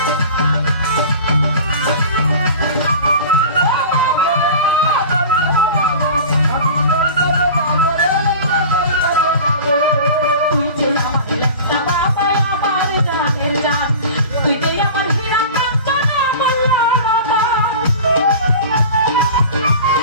তুই যে আমার ল্যাংটা বাবা, আমার জানের জান, তুই যে আমার হীরা কাঞ্চন অমূল্য রতন।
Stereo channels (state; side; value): inverted; both; correlation -0.37